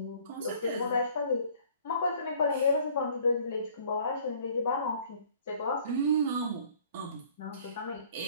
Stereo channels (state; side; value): inverted; both; correlation -0.56